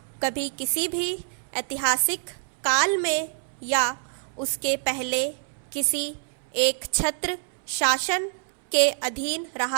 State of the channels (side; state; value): left; silent; 61 dB below the other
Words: कभी किसी भी ऐतिहासिक काल में या उसके पहले किसी एक छत्र शासन के अधीन